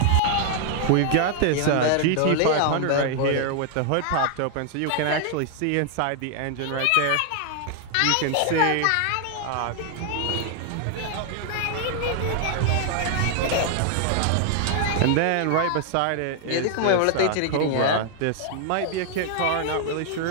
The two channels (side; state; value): both; different; correlation 0.00